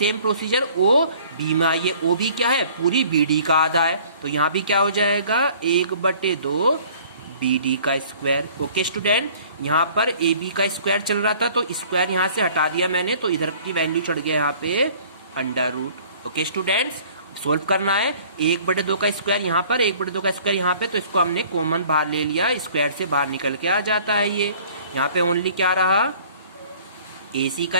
प्रोसीजर OB में आइए, OB क्या है, पूरी BD का आधा है, तो यहाँ भी क्या हो जाएगा 1/2 BD का स्क्वायर। ओके स्टूडेंट, यहाँ पर AB का स्क्वायर चल रहा था तो स्क्वायर यहाँ से हटा दिया मैंने, तो इधर की वैल्यू चढ़ गया यहाँ पे √। ओके स्टूडेंट्स, सोल्व करना है 1/2 का स्क्वायर यहाँ पर, 1/2 का स्क्वायर यहाँ पे, तो इसको हमने कॉमन बाहर ले लिया, स्क्वायर से बाहर निकल के आ जाता है ये। यहाँ पे ओनली क्या रहा, AC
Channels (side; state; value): both; inverted; correlation -0.52